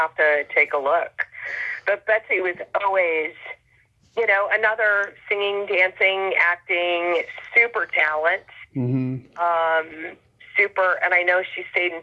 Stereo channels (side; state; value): both; identical; correlation 1.00